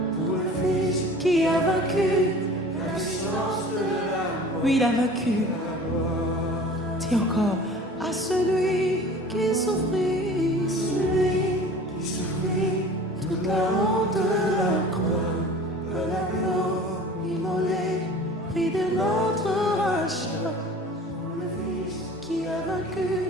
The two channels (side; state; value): both; normal; correlation 0.43